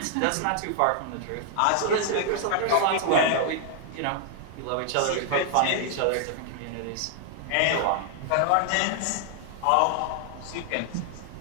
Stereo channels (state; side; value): different; both; correlation 0.00